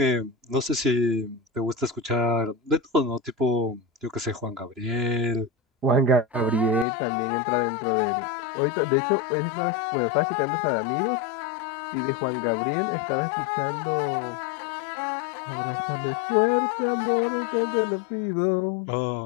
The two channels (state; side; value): drops out; right; at 6.9 s